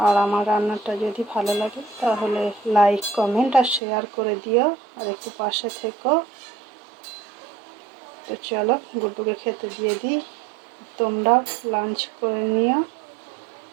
আর আমার রান্নাটা যদি ভালো লাগে তাহলে লাইক, কমেন্ট আর শেয়ার করে দিও, আর একটু পাশে থেকো। তো চলো, গুড্ডুকে খেতে দিয়ে দিই। তোমরাও লাঞ্চ করে নিও।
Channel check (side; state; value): left; drops out; at 3.8 s